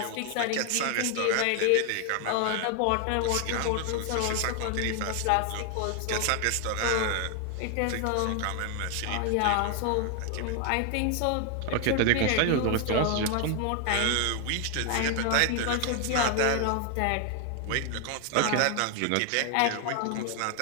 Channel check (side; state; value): both; different; correlation 0.00